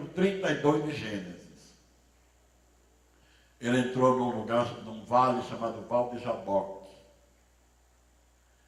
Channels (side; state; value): both; identical; correlation 1.00